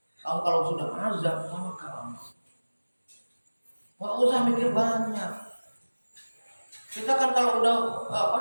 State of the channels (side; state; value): both; inverted; correlation -1.00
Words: Kalau sudah azam, tawakkal 'ala Allah. Enggak usah mikir banyak. Kita kan kalau udah